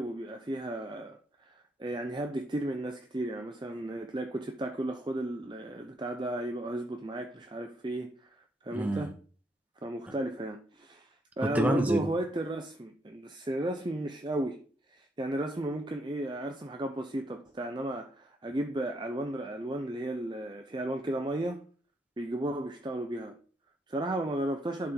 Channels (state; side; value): normal; both; correlation 0.75